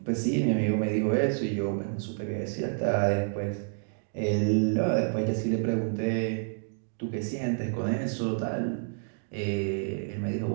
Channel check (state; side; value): silent; left; digital silence